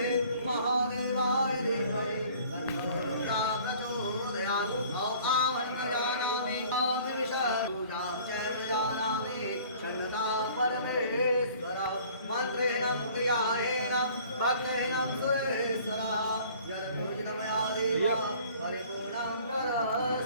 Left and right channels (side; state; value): both; inverted; correlation -0.52